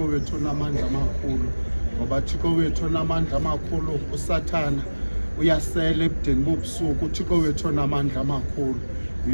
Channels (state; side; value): inverted; both; correlation -1.00